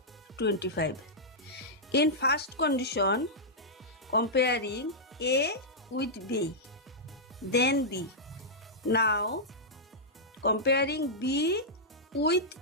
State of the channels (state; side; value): normal; both; correlation -0.10